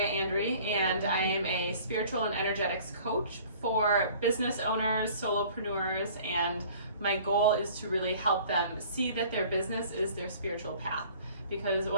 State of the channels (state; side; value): inverted; both; correlation -0.50